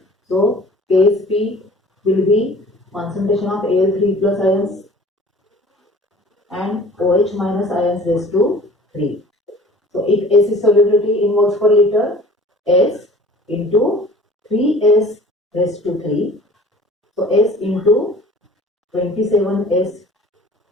So Ksp will be concentration of Al3 plus ions and OH minus ions raised to 3. So if S is solubility in moles per liter, S into 3S raised to 3. So S into 27S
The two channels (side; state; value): both; normal; correlation 0.47